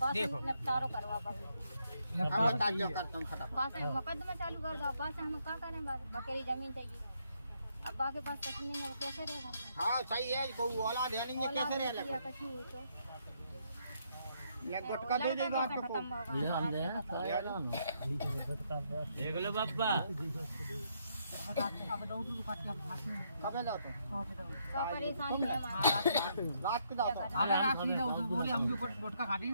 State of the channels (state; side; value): inverted; both; correlation -0.74